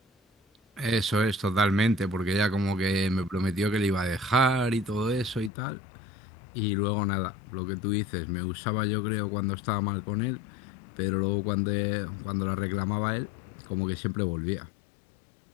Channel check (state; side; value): drops out; right; at 5.5 s